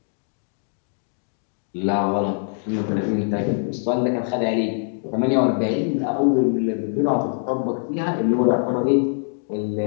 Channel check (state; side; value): silent; right; digital silence